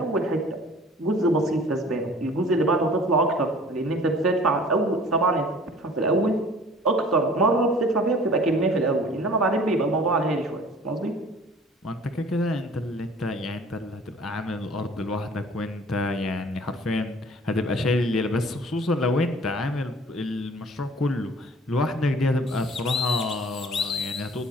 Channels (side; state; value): both; normal; correlation 0.49